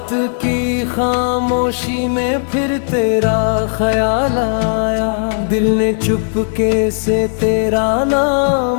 की खामोशी में फिर तेरा ख्याल आया, दिल ने चुपके से तेरा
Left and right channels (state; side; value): silent; right; digital silence